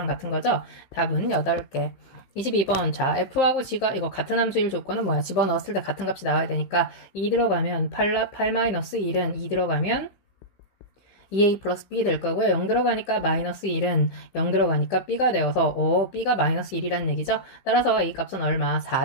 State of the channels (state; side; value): late; right; 15 ms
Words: 같은 거죠. 답은 8개. 22번 자 F하고 G가 이거 같은 함수일 조건은 뭐야? 집어넣었을 때 같은 값이 나와야 되니까 2 들어가면 8-1은 2 들어가면 2a 플러스 b 될 거고요. 0 들어가니까 마이너스 1은 0 들어가니까 b가 되어서 b가 마이너스 1이라는 얘기죠. 따라서 a 값은 얼마?